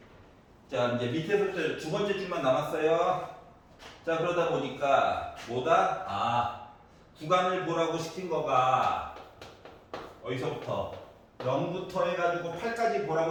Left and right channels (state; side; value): identical; both; correlation 1.00